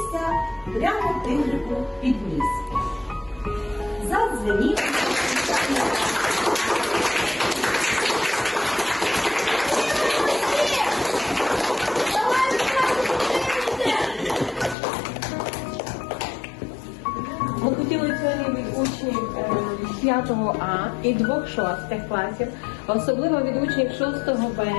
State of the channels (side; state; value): right; drops out; at 14.8 s